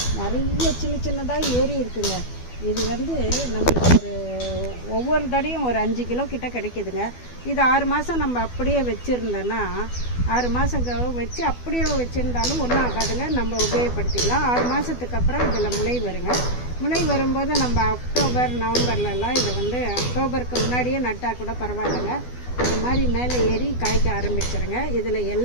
நிறைய சின்னதாக ஏறி இருக்குங்க. இது நம்மளுக்கு ஒவ்வொரு தடையும் ஒரு 5 கிலோ கிட்ட கிடைக்குதுங்க. இது 6 மாதம் நம்ம அப்படியே வச்சுருந்தோன்னா 6 மாதம் வச்சு அப்படியே வச்சுருந்தாலும் ஒன்றும் ஆகாதுங்க. நம்ம உபயோகப்படுத்திக்கலாம். 6 மாதத்துக்கு அப்புறம் இதில் முளை வருங்க. முளை வரும்போது நம்ம அக்டோபர் நவம்பர்லலாம் இதை அக்டோபருக்கு முன்னாடியே நட்டால் கூட பரவாயில்லைங்க. இது மாதிரி மேலே ஏறி காய்க்க ஆரம்பிச்சிருங்க. இதில்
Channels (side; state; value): right; late; 12 ms